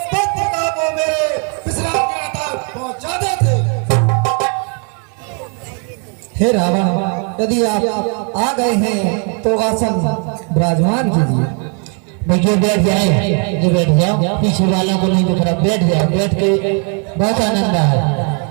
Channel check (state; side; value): quieter; left; 40.0 dB